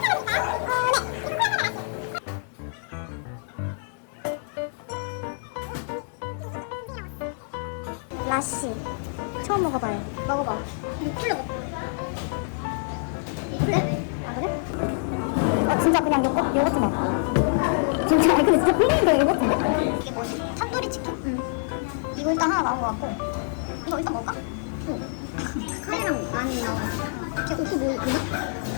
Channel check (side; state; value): right; silent; digital silence